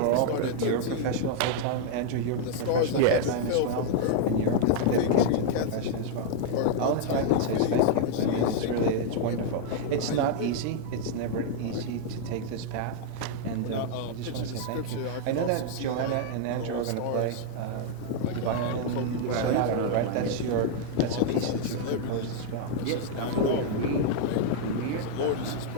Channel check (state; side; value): different; both; correlation -0.01